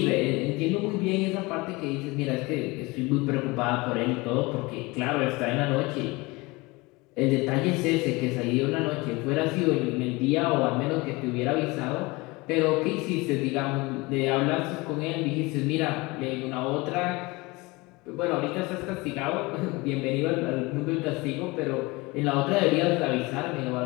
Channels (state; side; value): quieter; right; 23.8 dB